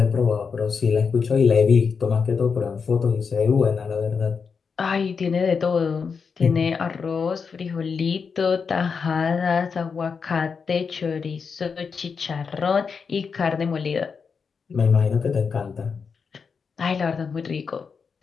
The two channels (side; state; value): right; quieter; 5.7 dB